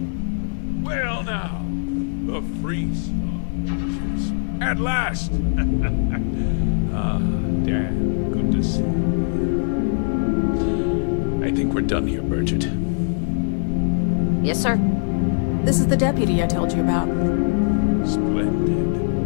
Well now, the Freestar Rangers. At last! Dan, good to see you. I think we're done here, Burgett. Yes, sir. This is the deputy I told you about. Splendid.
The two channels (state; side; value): silent; right; digital silence